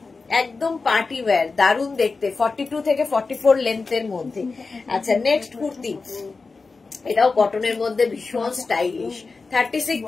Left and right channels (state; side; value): quieter; right; 4.2 dB